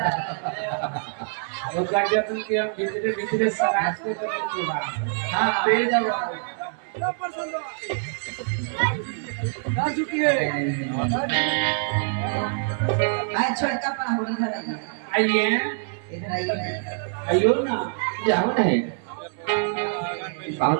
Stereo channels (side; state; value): left; silent; 62 dB below the other